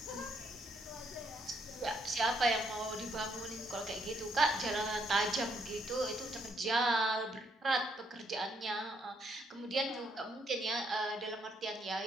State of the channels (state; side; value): normal; both; correlation 0.73